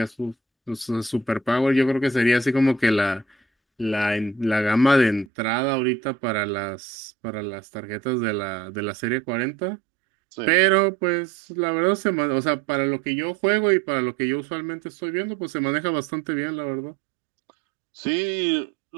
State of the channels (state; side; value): drops out; left; at 5.2 s